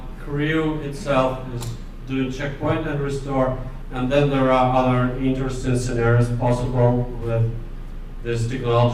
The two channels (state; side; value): identical; both; correlation 1.00